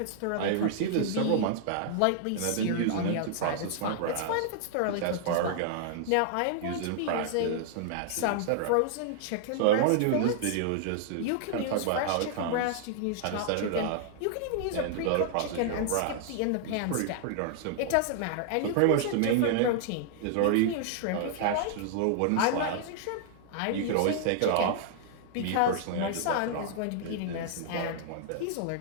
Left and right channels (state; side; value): different; both; correlation -0.01